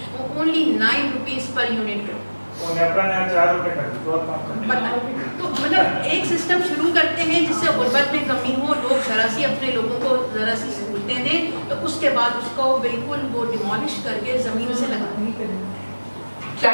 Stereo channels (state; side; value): inverted; both; correlation -1.00